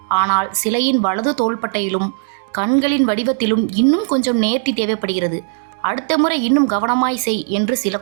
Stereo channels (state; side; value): silent; left; digital silence